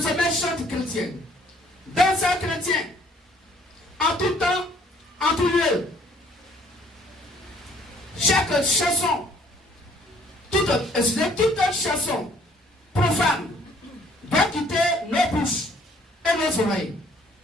chante chrétien. Danseur chrétien. En tout temps, en tout lieu. Chaque chanson, toute chanson profane doit quitter nos bouches et nos oreilles.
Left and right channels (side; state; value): both; normal; correlation 0.61